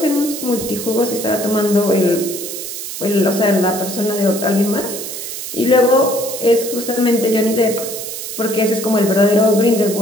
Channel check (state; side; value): noise; right; hiss, 7 dB below the sound